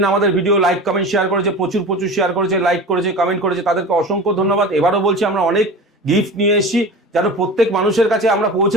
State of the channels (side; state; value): both; normal; correlation 0.33